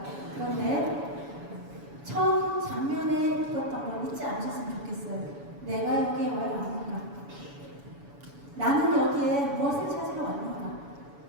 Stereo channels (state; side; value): late; left; 7.1 ms